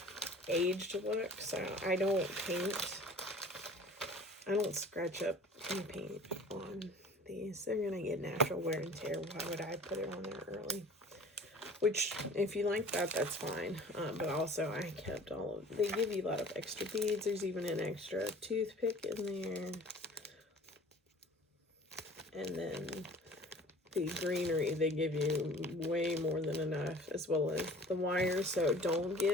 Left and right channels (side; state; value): both; normal; correlation 0.46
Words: aged look, so I don't paint. I don't scratch up and paint on these. They're going to get natural wear and tear. Why would I put it on there early? Which, if you like that, that's fine. But also, I kept all of, they give you a lot of extra beads. There's even an extra toothpick in there. And then the greenery, they give you way more than enough, as well as the wire. So don't